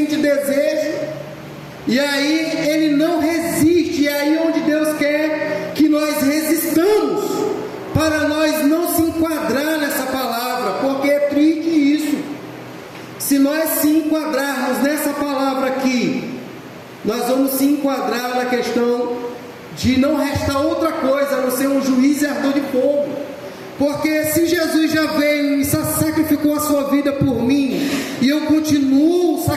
desejo, e aí ele não resiste. E aí onde Deus quer que nós resistamos, para nós não se enquadrar nessa palavra, porque é triste isso. Se nós se enquadrarmos nessa palavra aqui, nós vamos se enquadrar na questão de não restar outra coisa a não ser um juiz e ardor de fogo. Porque se Jesus já veio e sacrificou a sua vida por mim, e eu continuo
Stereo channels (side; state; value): both; identical; correlation 1.00